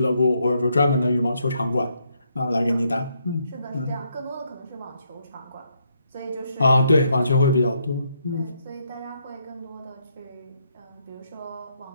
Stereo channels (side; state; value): both; inverted; correlation -0.75